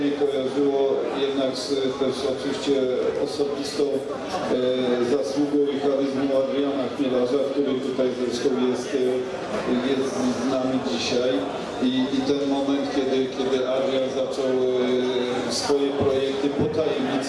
kojarzyło jednak z też oczywiście osobistą zasługą i charyzmą Adriana Chmielarza, który tutaj zresztą jest z nami dzisiaj. I ten moment, kiedy Adrian zaczął swoje projekty po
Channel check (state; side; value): identical; both; correlation 1.00